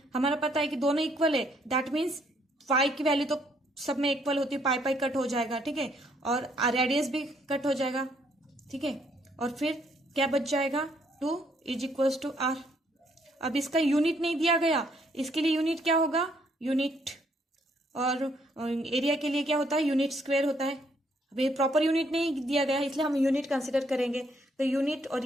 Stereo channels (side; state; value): both; normal; correlation 0.69